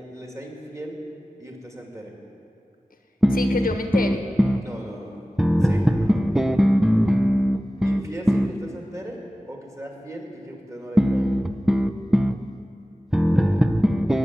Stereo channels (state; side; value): normal; both; correlation 0.97